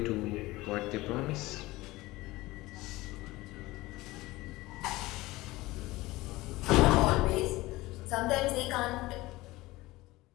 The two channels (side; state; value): right; quieter; 19.5 dB